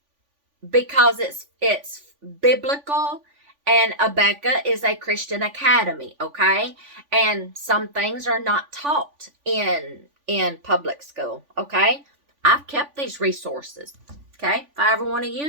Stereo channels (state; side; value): late; left; 3.5 ms